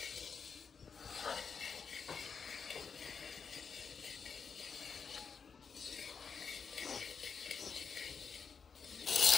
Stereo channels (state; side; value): quieter; right; 6.0 dB